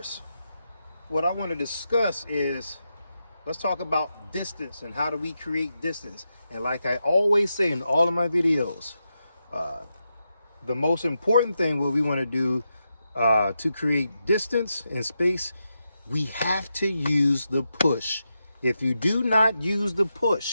what I want to discuss is, let's talk about distance and how do we create distance. And like I always say in all of my videos, the most important thing what we want to do to create distance and space, we have to use the push. If you do not use the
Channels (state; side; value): inverted; both; correlation -0.87